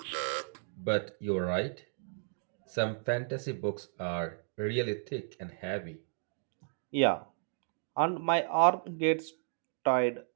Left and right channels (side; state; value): left; silent; digital silence